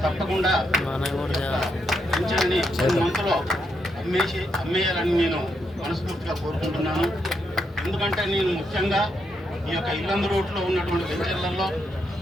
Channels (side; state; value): both; normal; correlation 0.80